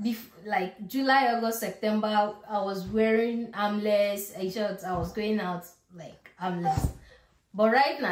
Like July, August, September, I was wearing armless shorts. I was going out like armless. But right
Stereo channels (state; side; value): identical; both; correlation 1.00